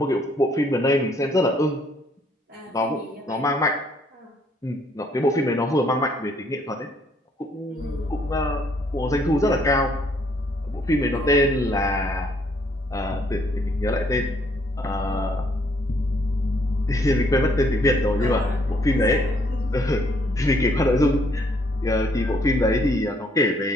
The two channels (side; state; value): both; normal; correlation 0.67